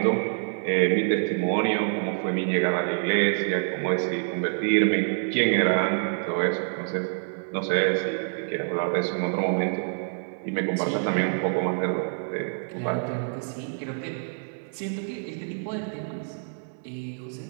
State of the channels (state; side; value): silent; left; 60 dB below the other